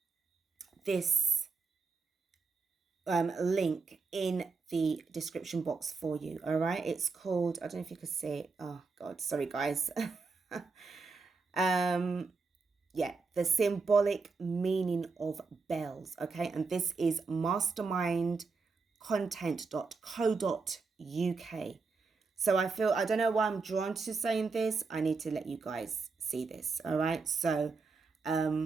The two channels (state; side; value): quieter; left; 4.5 dB